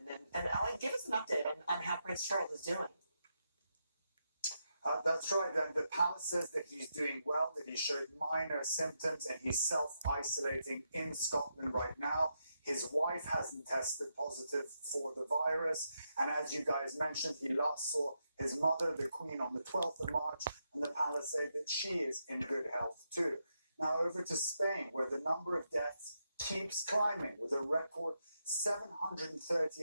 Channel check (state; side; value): inverted; both; correlation -0.83